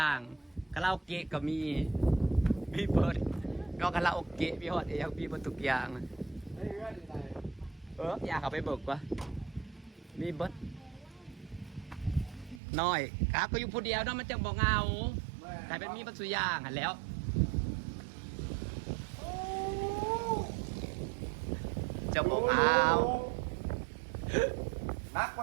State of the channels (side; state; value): left; drops out; at 12.6 s